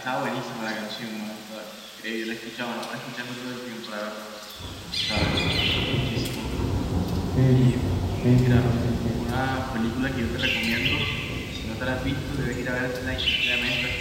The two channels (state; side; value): identical; both; correlation 1.00